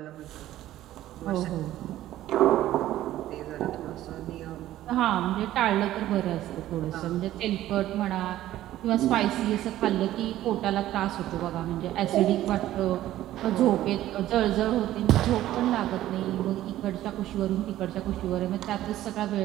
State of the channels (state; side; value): quieter; left; 13.9 dB